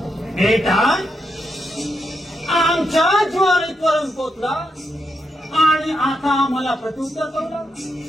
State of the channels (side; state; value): both; normal; correlation 0.83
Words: बेटा आमच्या ज्वारीतवरून पोचला आणि आता आम्हाला प्रत्युत्तर करू